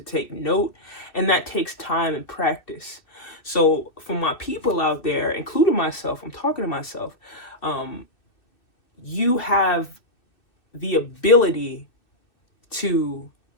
take note, and that takes time and practice. So for my people out there, including myself, I'm talking to myself, you have the ability to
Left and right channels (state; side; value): late; right; 2.6 ms